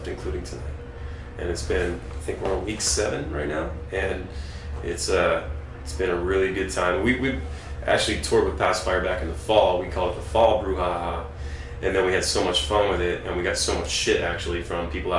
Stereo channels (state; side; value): identical; both; correlation 1.00